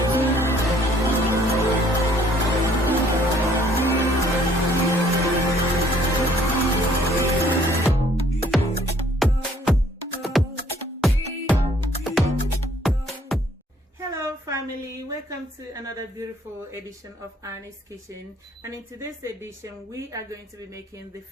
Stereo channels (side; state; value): both; normal; correlation 0.61